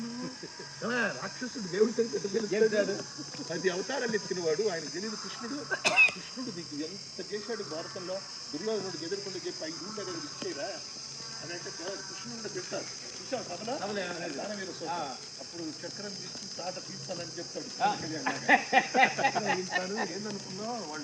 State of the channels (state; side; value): identical; both; correlation 1.00